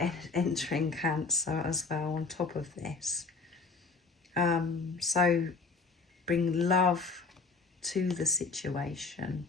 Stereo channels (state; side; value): quieter; right; 4.2 dB